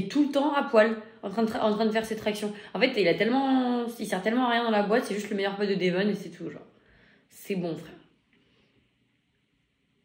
tout le temps à poil, en train de faire ses tractions. En fait, il sert tellement à rien dans la boîte, c'est juste le meilleur pote de Devon et c'est tout, genre. C'est bon, frère.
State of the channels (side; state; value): both; identical; correlation 1.00